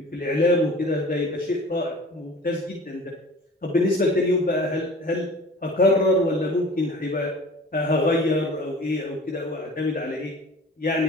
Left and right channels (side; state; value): both; normal; correlation 0.43